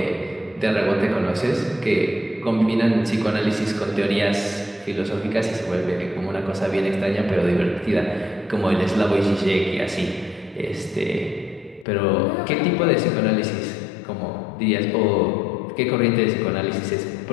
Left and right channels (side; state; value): right; drops out; at 11.9 s